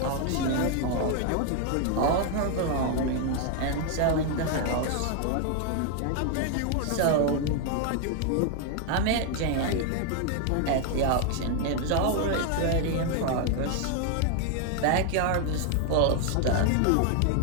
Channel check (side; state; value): both; different; correlation 0.00